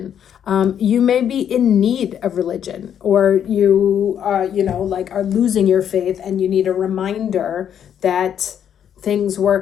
You may be in need of religion, or you like are losing your faith and you need a reminder that things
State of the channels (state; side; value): quieter; right; 9.1 dB